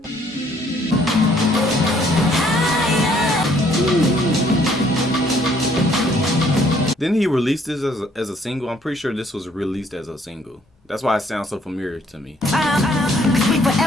Didn't he release this as a single? I'm pretty sure this was released as a single. That's why it sounds so familiar to me.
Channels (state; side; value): normal; both; correlation 0.64